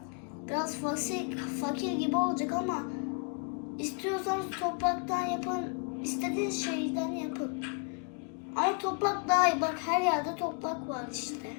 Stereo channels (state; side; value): quieter; right; 39.5 dB